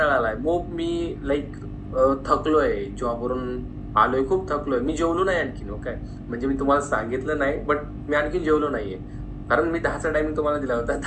आलाय. मी लाइक थकलोय, जॉबवरून आलोय, खूप थकलोय. मी जेवलो नाही आणखीन हो काय. म्हणजे मी तुम्हाला सांगितलं नाही, बट मी आणखीन जेवलो नाहीये. कारण मी 10चा टायमिंग तुम्हाला दिला होता.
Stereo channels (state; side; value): identical; both; correlation 1.00